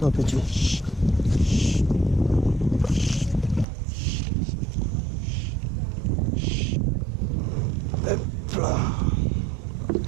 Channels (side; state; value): left; drops out; at 3.7 s